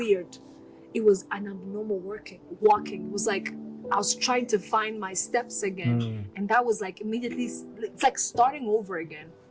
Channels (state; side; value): identical; both; correlation 1.00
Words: It was an abnormal walking. It was like I was trying to find my steps again. And that was like immediately, it's like starting over again.